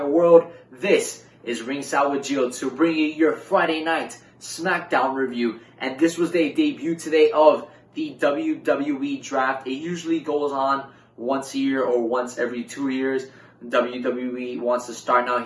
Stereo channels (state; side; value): identical; both; correlation 1.00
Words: world. This is Ringside With Gio to bring you your Friday night Smackdown review. And this was the debut today of the WWE draft. It usually goes on once a year or once every 2 years. WWE wants to start now